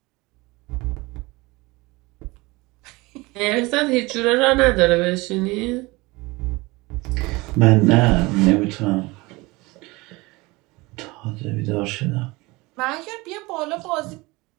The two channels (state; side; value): quieter; left; 23.0 dB